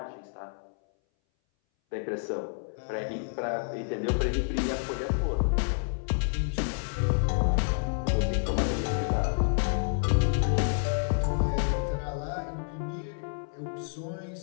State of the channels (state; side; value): silent; right; 58 dB below the other